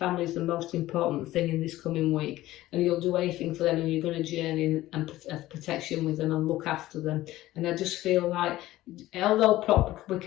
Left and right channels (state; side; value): quieter; right; 16.0 dB